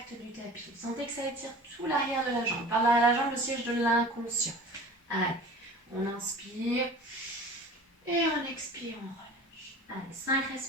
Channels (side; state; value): both; normal; correlation 0.40